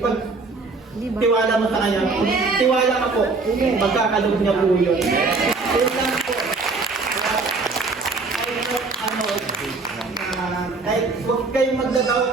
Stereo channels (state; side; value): quieter; left; 3.9 dB